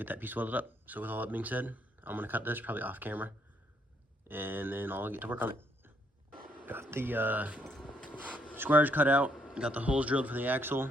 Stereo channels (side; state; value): both; normal; correlation 0.72